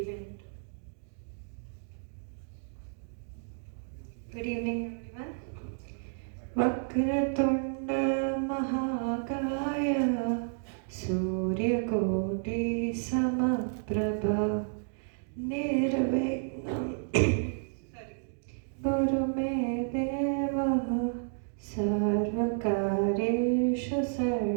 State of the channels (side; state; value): left; silent; digital silence